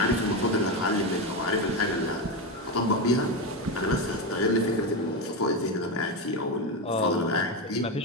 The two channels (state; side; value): normal; both; correlation 0.13